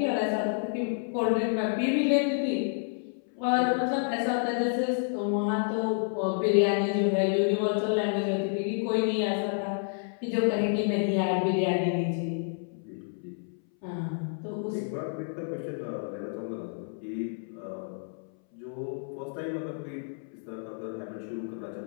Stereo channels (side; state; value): right; silent; 58 dB below the other